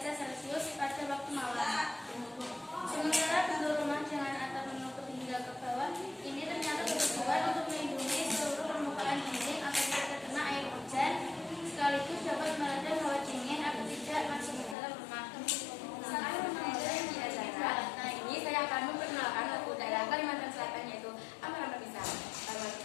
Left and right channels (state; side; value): drops out; right; at 14.8 s